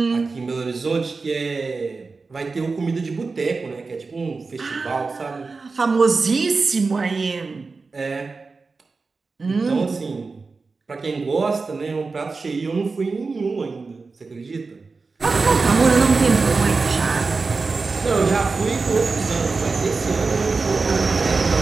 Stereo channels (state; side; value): quieter; left; 4.2 dB